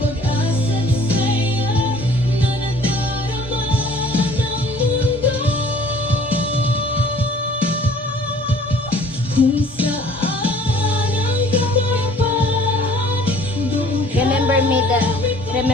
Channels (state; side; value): normal; both; correlation 0.52